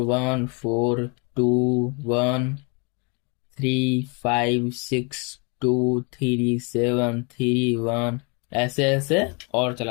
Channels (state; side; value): quieter; right; 33.0 dB